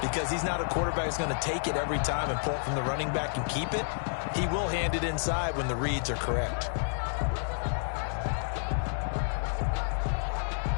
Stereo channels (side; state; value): right; silent; 55 dB below the other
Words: Because he's not a quarterback who's going to take it every time and pull it from the running back and keep it. He will hand it inside when the reads are correct.